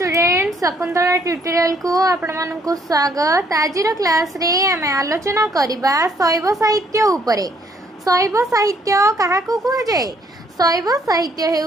Shakuntala tutorial को आपण मानकु स्वागत। आज क्लास रे आमे आलोचना करिबा शैव साहित्य उपरे। शैव साहित्य काहाकु कुहा जाय? शैव साहित्य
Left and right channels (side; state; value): both; normal; correlation 0.67